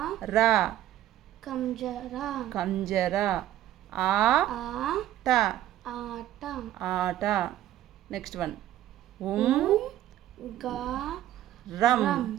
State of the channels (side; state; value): left; quieter; 13.1 dB